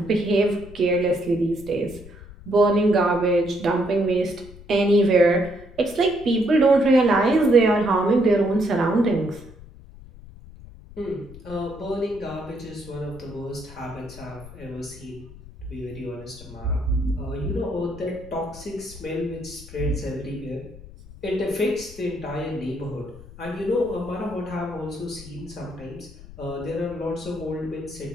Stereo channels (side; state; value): left; noise; rumble, 18 dB below the sound